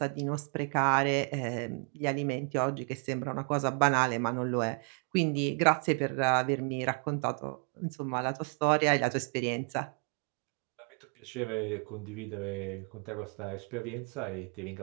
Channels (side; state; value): left; quieter; 38.1 dB